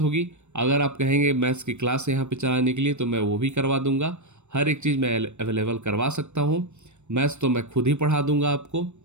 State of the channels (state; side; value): late; left; 0.83 ms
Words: अगर आप कहेंगे मैथ्स की क्लास यहाँ पे चलाने के लिए, तो मैं वो भी करवा दूंगा। हर एक चीज़ मैं अवेलेबल करवा सकता हूँ। मैथ्स तो मैं खुद ही पढ़ा दूंगा आपको,